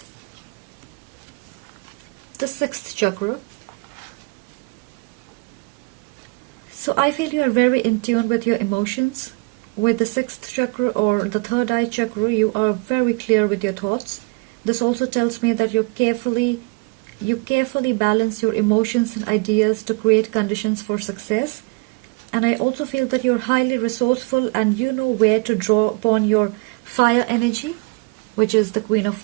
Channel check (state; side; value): quieter; left; 30.7 dB